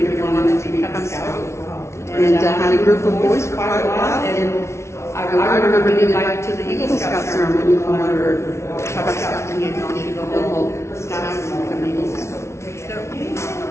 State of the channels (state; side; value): late; right; 0.13 ms